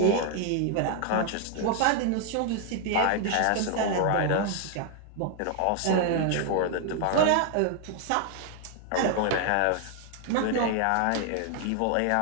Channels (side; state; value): both; different; correlation 0.00